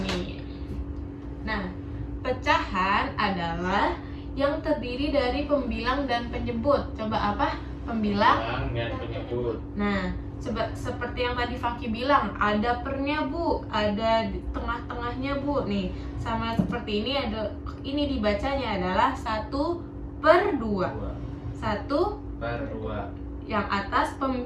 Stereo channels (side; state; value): both; identical; correlation 1.00